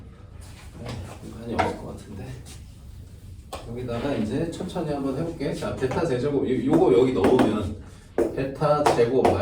공간이 없을 것 같은데 여기다가 이제 천천히 한번 해볼게. 자, 베타 세제곱 요거 여기 넣으면 베타 제곱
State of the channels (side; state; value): both; identical; correlation 1.00